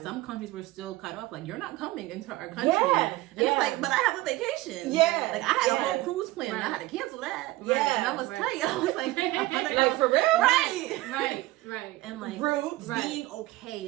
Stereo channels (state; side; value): quieter; left; 18.6 dB